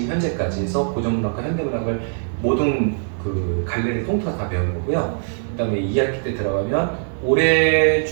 현재까지 해서 고전문학과 현대문학을 모든 그 갈래를 통틀어서 다 배우는 거고요. 그다음에 2학기 때 들어가면 올해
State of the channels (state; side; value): silent; left; digital silence